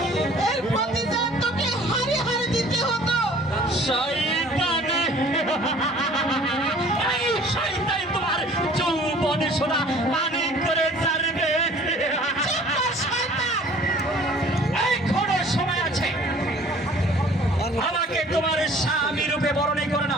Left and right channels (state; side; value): normal; both; correlation 0.51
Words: এর প্রতিদান তোকে হারে হারে দিতে হতো। এই শয়তান তোমার যৌবনে সোনা পানি করে ছাড়বে। এখনো সময় আছে, আমাকে তোমার স্বামী রূপে বরণী করে